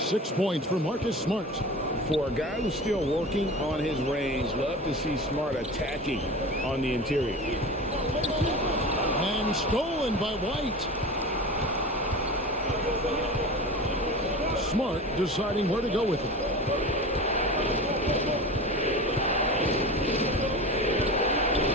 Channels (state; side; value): normal; both; correlation 0.32